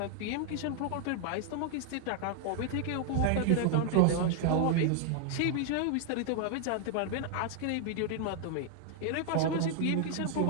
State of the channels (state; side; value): different; both; correlation 0.00